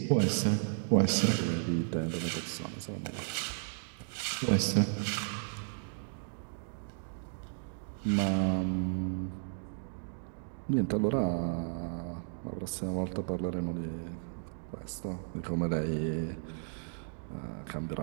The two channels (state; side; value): silent; left; digital silence